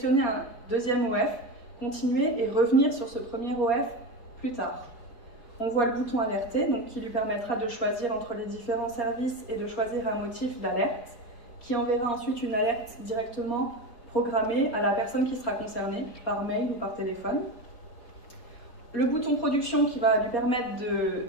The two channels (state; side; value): late; right; 4.3 ms